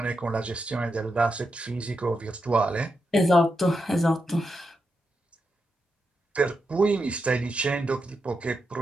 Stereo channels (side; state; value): both; normal; correlation 0.86